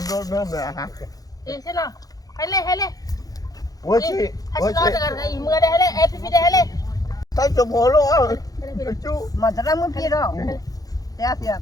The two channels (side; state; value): right; late; 0.18 ms